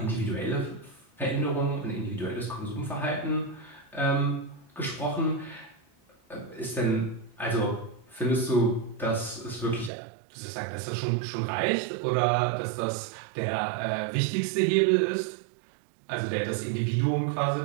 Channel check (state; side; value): drops out; left; at 9.9 s